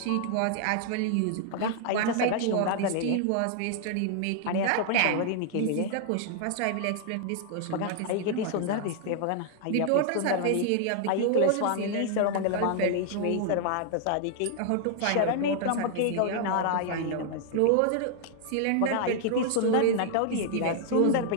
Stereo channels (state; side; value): different; both; correlation 0.00